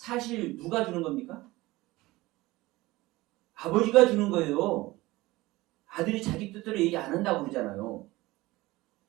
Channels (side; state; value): left; quieter; 19.6 dB